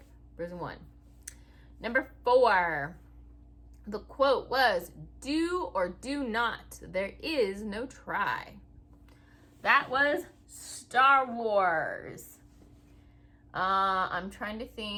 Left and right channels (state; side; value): identical; both; correlation 1.00